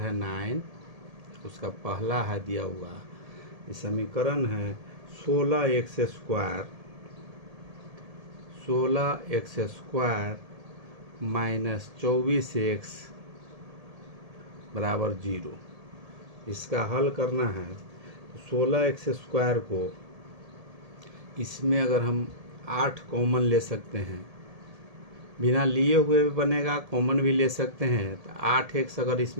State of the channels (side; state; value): left; late; 1.7 ms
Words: 9, उसका पहला है दिया हुआ ये समीकरण है 16x² माइनस 24x बराबर 0। इसका हल करना है। 16x² को इसमें अगर हम 8 कॉमन ले सकते हैं, बिना लिए हुए भी बनेगा, कॉमन भी ले सकते हैं। तो 8x अगर